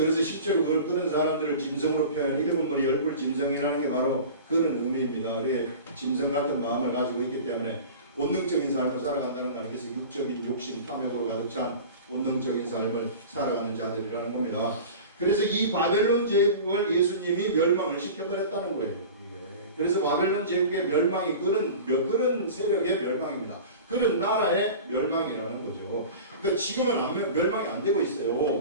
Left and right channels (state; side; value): inverted; both; correlation -0.37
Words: 그래서 실제로 그런 사람들을 짐승으로 표현, 일곱 머리 열불 짐승이라는 게 바로 그런 의미입니다. 그게 짐승 같은 마음을 가지고 있기 때문에 본능적인 삶을 살아간다는 거 그래서 육적인 욕심, 탐욕으로 가득 찬 본능적인 삶을 살아가는 자들이라는 겁니다. 그래서 이 바벨론 제국을 예수님이 멸망을 시켜버렸다는 거예요. 그래서 바벨론 제국의 멸망이 그런 세력의 멸망입니다. 그런 나라의 멸망이라는 거죠. 그러니까 지금은 멸망이 안 되고